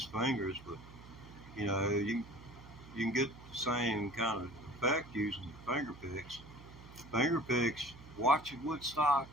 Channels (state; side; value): noise; right; hum, 18 dB below the sound